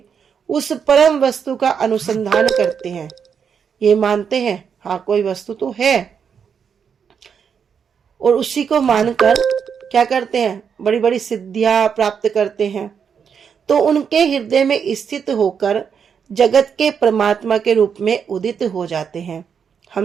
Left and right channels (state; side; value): quieter; left; 7.0 dB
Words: उस परम वस्तु का अनुसंधान करते हैं, ये मानते हैं हाँ कोई वस्तु तो है, और उसी को मानकर क्या करते हैं? बड़ी बड़ी सिद्धियां प्राप्त करते हैं। तो उनके हृदय में स्थित होकर जगत के परमात्मा के रूप में उदित हो जाते हैं।